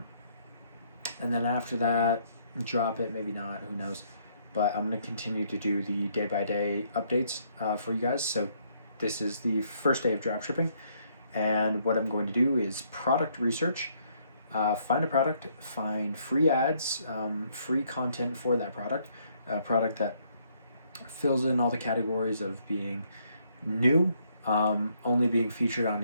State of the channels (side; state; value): both; inverted; correlation -0.69